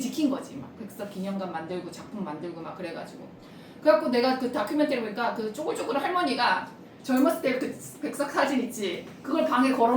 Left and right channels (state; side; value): identical; both; correlation 1.00